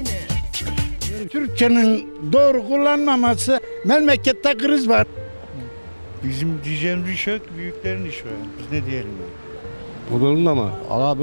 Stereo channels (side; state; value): both; inverted; correlation -1.00